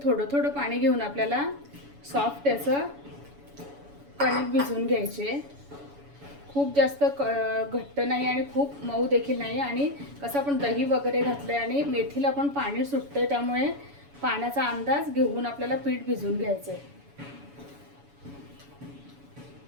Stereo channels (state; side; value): late; left; 7.1 ms